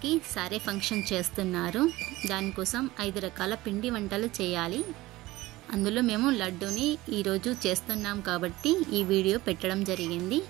సారే ఫంక్షన్ చేస్తున్నారు. దానికోసం 5 రకాల పిండి వంటలు చేయాలి. అందులో మేము లడ్డూని ఈరోజు చేస్తున్నాం కాబట్టి ఈ వీడియో పెట్టడం జరిగింది.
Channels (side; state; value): left; quieter; 18.5 dB